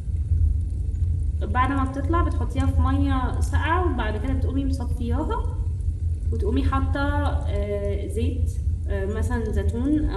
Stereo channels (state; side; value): identical; both; correlation 1.00